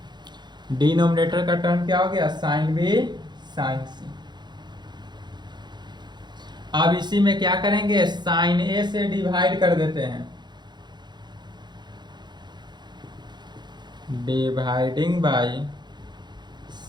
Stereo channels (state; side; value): late; left; 0.21 ms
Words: डिनोमिनेटर का टर्म क्या हो गया, साइन बी साइन सी। अब इसी में क्या करेंगे, साइन ए से डिवाइड कर देते हैं, dividing by